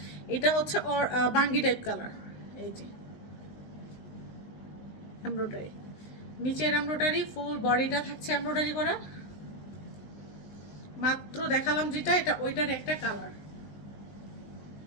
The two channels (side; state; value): right; late; 19 ms